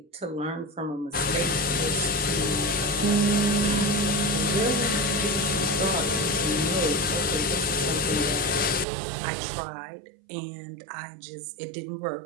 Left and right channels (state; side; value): drops out; left; at 8.8 s